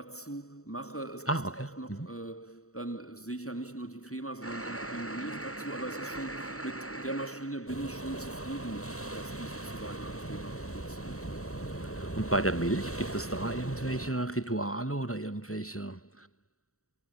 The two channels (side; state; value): right; late; 0.64 ms